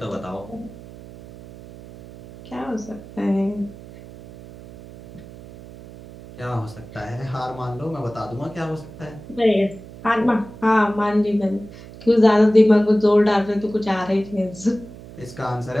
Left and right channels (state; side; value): noise; right; hum, 17 dB below the sound